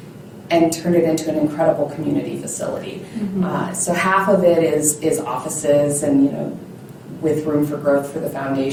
and turned it into an incredible community facility. So half of it is offices and, with room for growth for the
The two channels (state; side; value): identical; both; correlation 1.00